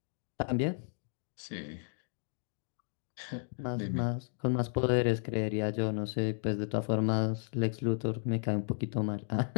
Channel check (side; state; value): right; silent; 55 dB below the other